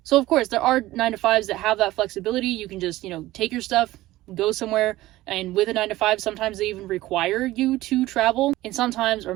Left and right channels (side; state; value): left; quieter; 16.9 dB